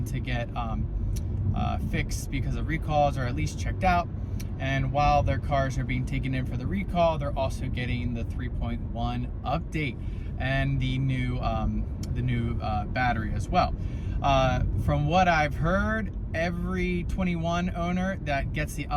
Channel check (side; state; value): both; identical; correlation 1.00